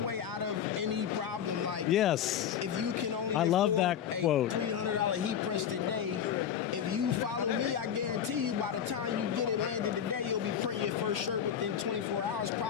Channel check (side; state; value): right; quieter; 8.7 dB